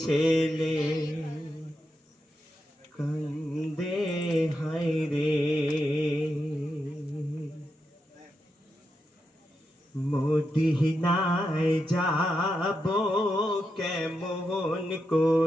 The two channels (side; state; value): both; normal; correlation 0.86